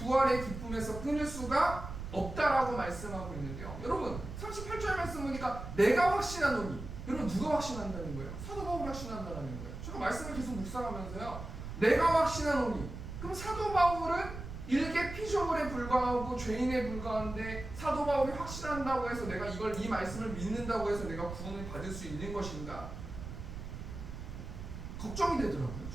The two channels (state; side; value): noise; right; rumble, 9 dB below the sound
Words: 기쁨에서 끊을 수가 없다라고 말씀하고 있는데요, 여러분 38절 말씀 보니까 내가 확신하노니, 여러분 누가 확신한다는 거예요? 사도 바울이 확신한다는 거예요. 제가 말씀을 계속 묵상하면서요, 내가 확신하노니, 그럼 사도 바울은 일개 피조물에 불과하고 죄인에 불과한데 사도 바울이 확신한다고 해서 내가 이 말씀을 믿는다고 해서 내가 구원을 받을 수 있는 것인가? 걱정이 되더라고요.